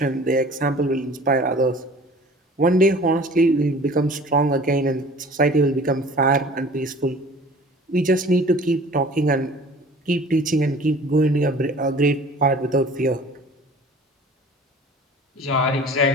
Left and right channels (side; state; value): both; normal; correlation 0.47